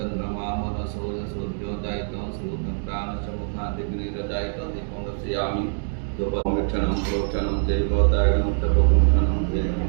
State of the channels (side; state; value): left; silent; digital silence